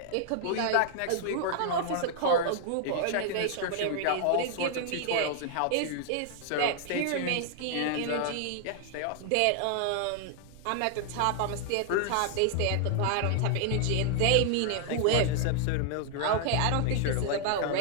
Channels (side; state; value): both; different; correlation 0.00